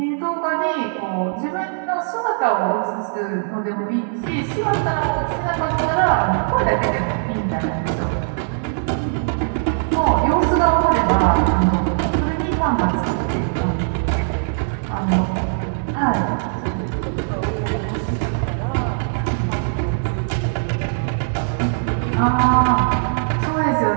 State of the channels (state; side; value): silent; left; digital silence